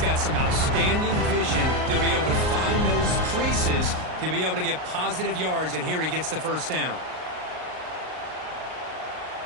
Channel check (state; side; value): late; left; 38 ms